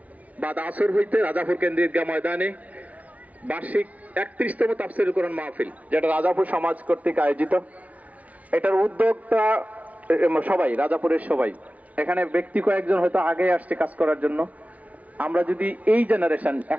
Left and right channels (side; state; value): left; late; 0.070 ms